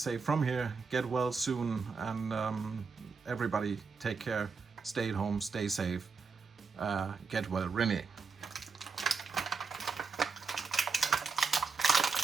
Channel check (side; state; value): left; quieter; 5.0 dB